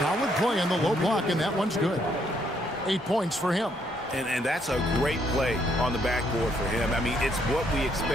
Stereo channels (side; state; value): both; normal; correlation 0.71